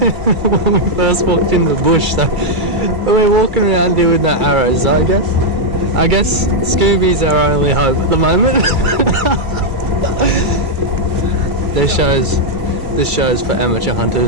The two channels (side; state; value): left; late; 2.3 ms